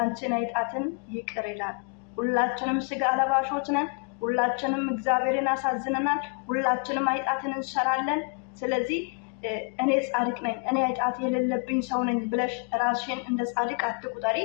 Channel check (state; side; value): quieter; right; 36.5 dB